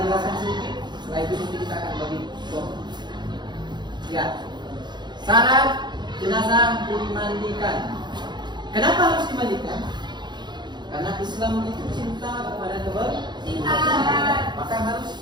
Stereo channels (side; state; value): left; late; 0.21 ms